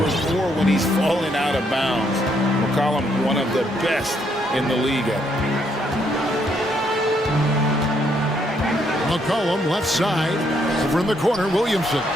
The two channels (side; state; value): both; normal; correlation 0.73